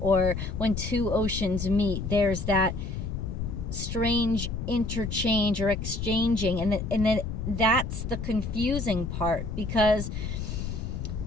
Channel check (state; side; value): noise; left; rumble, 4 dB below the sound